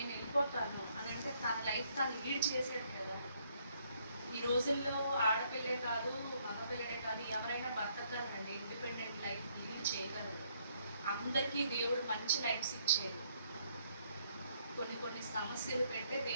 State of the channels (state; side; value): inverted; both; correlation -0.70